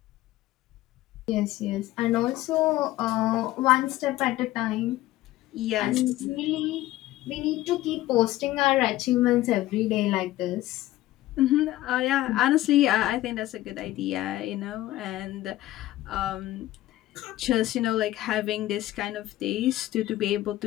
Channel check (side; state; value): right; quieter; 15.8 dB